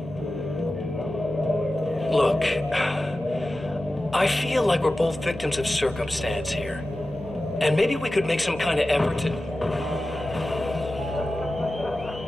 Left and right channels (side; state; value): both; normal; correlation 0.94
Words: Look, I feel like we're both victims of circumstance here. And maybe we could make some kind of effort to...